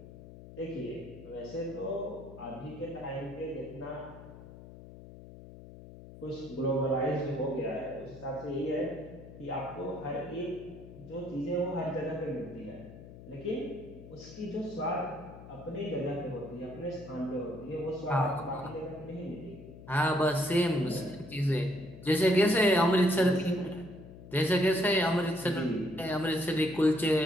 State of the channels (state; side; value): noise; left; hum, 16 dB below the sound